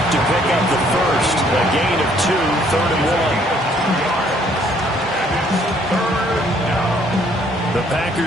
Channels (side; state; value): both; normal; correlation 0.64